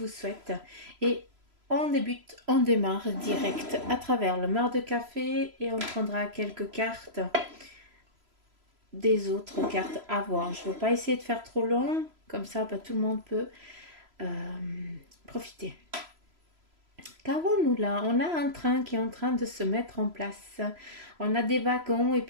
souhaite. Et on démarre direct à travers le mar de café et on prendra quelques cartes des autres cartes à voir. Je ne veux pas essayer de faire trop long, comme ça tout le monde peut euh, profiter. Qu'avons-nous là? On a un train qui est en train de se mettre en place. On a des wagons et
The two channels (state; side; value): late; left; 3.0 ms